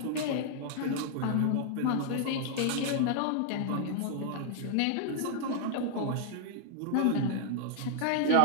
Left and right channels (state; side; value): different; both; correlation -0.01